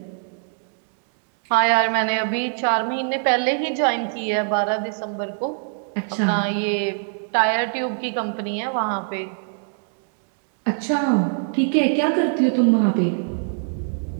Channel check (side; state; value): left; silent; digital silence